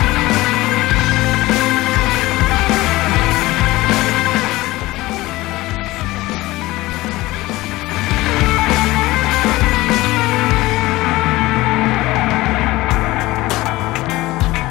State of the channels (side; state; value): right; quieter; 19.0 dB